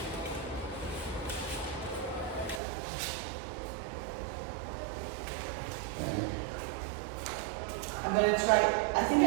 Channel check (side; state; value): left; drops out; at 2.6 s